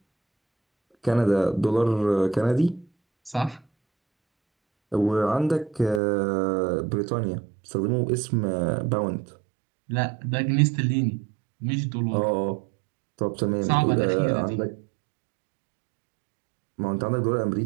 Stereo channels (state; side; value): drops out; left; at 6.0 s